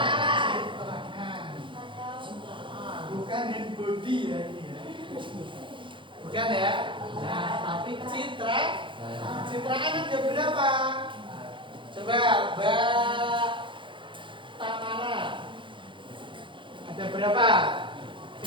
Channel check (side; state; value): left; late; 0.24 ms